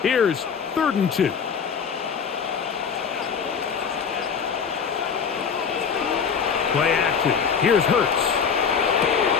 Here's 3rd and 2. Play action. Here's Hurts.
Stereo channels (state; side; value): quieter; right; 6.5 dB